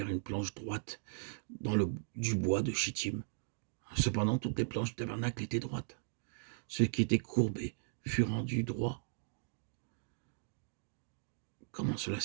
une planche droite du bois de Chittim. Cependant, toutes les planches du tabernacle étaient droites. Ce qui était courbé fut rendu droit. Comment cela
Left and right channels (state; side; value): silent; left; digital silence